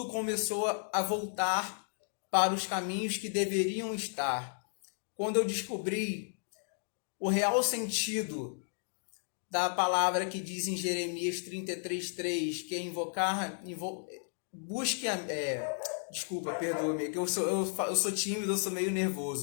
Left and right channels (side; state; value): right; silent; digital silence